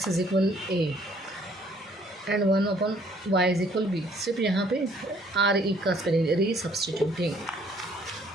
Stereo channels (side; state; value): both; normal; correlation 0.62